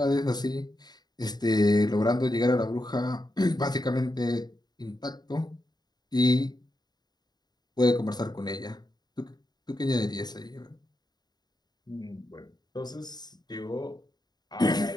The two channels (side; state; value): right; late; 0.20 ms